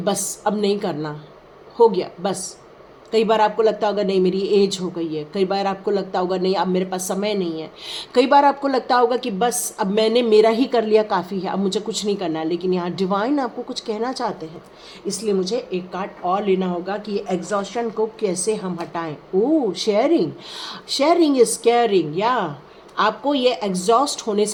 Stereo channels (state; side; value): identical; both; correlation 1.00